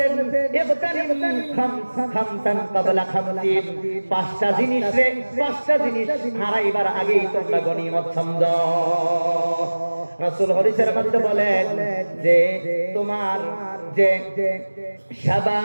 ইবতানিম খামসান ক্বাবলা খামসিন, পাঁচটা জিনিস হারাইবার আগেই তোমরা গনিমত সমঝো। রাসূল হাদিসের মধ্যে বলেন যে তোমার যে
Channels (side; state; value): both; inverted; correlation -1.00